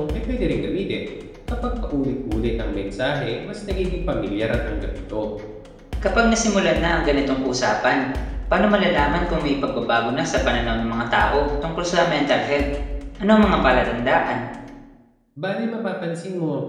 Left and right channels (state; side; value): identical; both; correlation 1.00